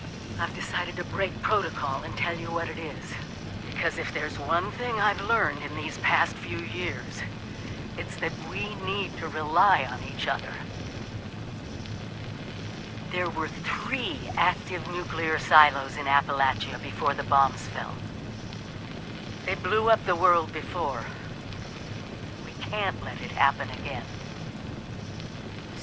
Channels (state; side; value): identical; both; correlation 1.00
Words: I've decided to break protocol and tell you what it is. Because if there's one thing I've learned in these past few years, it's that we need to rely on each other. There were 3 active nuclear silos in Appalachia before the bombs fell. They blew up the world before. We can't let it happen again.